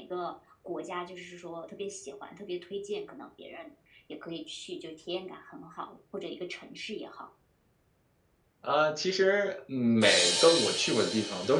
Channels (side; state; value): both; identical; correlation 1.00